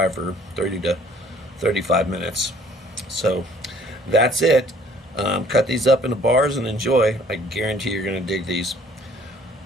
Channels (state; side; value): normal; both; correlation 0.58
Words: for 30 to 35 minutes. So that's it. Cut these up into bars and enjoy. I guarantee you're going to dig these.